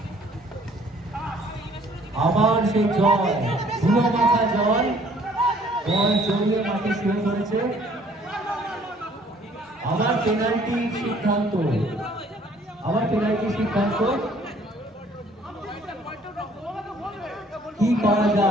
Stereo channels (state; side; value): normal; both; correlation 0.59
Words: আবার সেই জয়, ধুলো মাখা জয়, বল জড়িয়ে মাঠে শুয়ে পড়েছে। আবার পেনাল্টির সিদ্ধান্ত, আবার পেনাল্টির সিদ্ধান্ত। কি করা